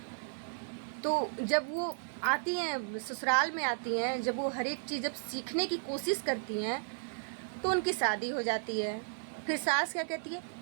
जब वो आती हैं ससुराल में आती हैं, जब वो हर एक चीज़ जब सीखने की कोशिश करती हैं तो उनकी शादी हो जाती है। फिर सास क्या कहती है,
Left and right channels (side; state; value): left; silent; digital silence